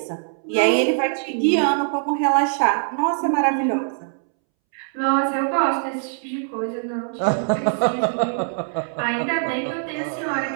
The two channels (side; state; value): left; silent; 64 dB below the other